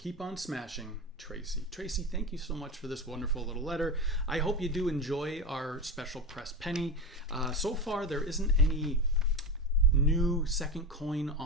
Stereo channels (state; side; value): normal; both; correlation 0.20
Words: on smashing, Tracy. Tracy, thank you so much for this wonderful little letter. I hope you do enjoy our special press penny. So far, there isn't any new second coin